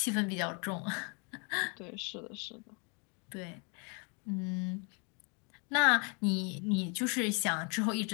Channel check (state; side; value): quieter; right; 34.9 dB